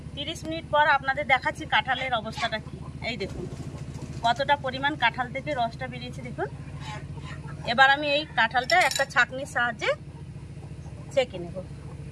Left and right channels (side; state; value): both; identical; correlation 1.00